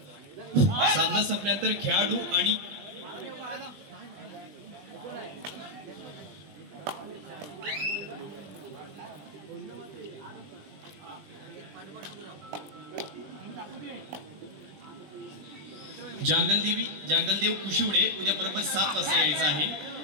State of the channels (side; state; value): left; late; 20 ms